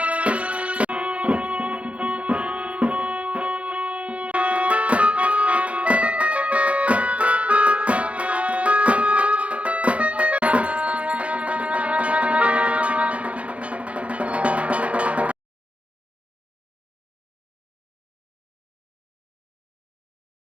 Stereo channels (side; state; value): left; late; 0.063 ms